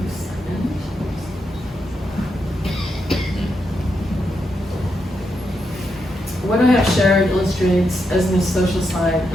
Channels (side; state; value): both; normal; correlation 0.83